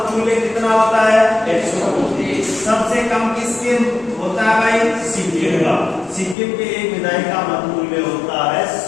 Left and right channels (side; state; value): right; drops out; at 6.4 s